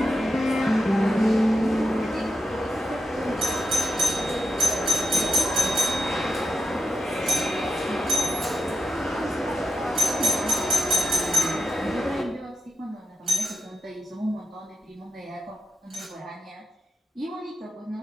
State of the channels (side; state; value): both; normal; correlation 0.86